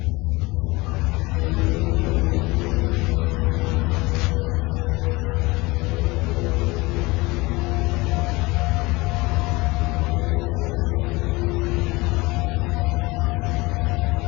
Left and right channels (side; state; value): right; quieter; 23.0 dB